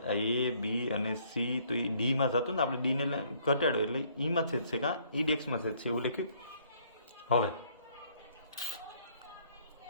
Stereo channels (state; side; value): inverted; both; correlation -0.64